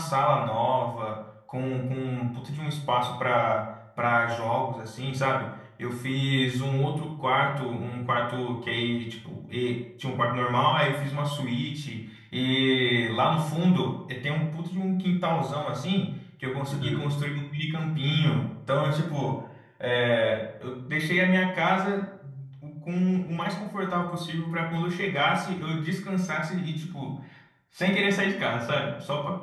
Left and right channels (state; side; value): identical; both; correlation 1.00